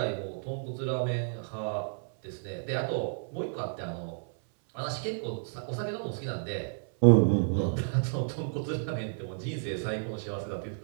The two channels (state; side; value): silent; left; 57 dB below the other